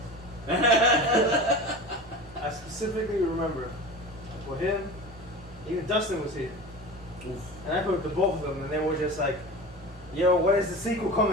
I specifically remember for him, even Dustin was here. Oof. And I put the both of them, and they were just like, yo, when is the sequel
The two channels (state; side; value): normal; both; correlation 0.32